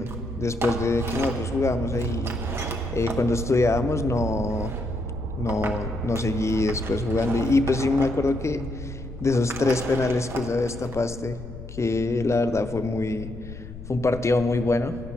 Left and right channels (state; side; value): noise; left; rumble, 13 dB below the sound